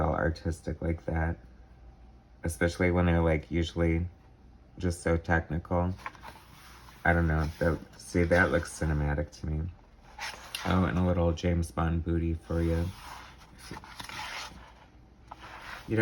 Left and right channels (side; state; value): both; identical; correlation 1.00